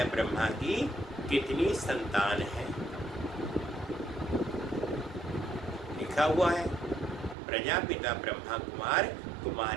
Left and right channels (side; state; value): left; drops out; at 7.4 s